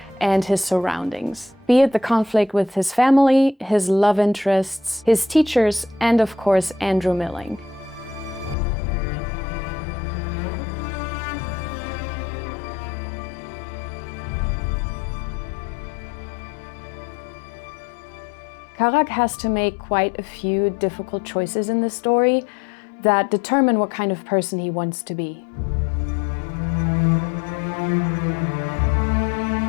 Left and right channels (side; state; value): right; drops out; at 8.6 s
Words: and his surroundings. Be it the conflict with his family, his love interests, his teachers, and of course Andrew Milling. Karak has to make quite a few difficult choices in this story that determine what kind of person he wants to be.